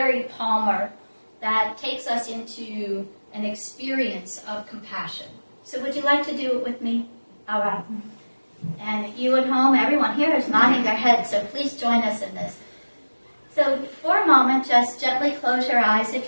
Palmer that takes us into an experience of compassion. So would you like to do it with me? All right. And you at home, everyone here is nodding their head, so please join us in this. So for a moment, just gently close your eyes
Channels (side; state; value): both; inverted; correlation -1.00